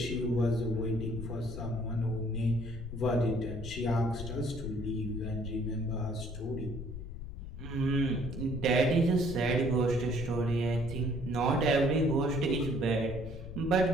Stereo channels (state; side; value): noise; left; rumble, 9 dB below the sound